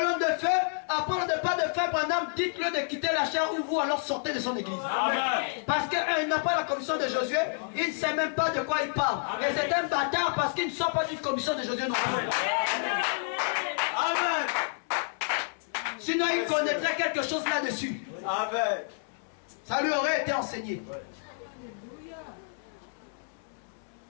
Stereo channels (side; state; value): right; silent; 58 dB below the other